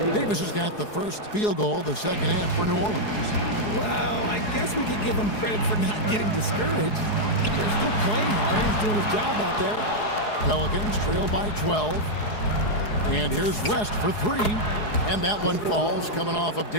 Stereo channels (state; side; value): late; right; 4.8 ms